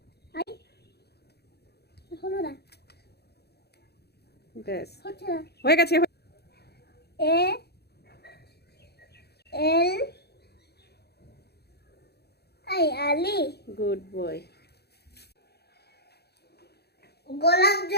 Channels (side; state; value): right; late; 0.47 ms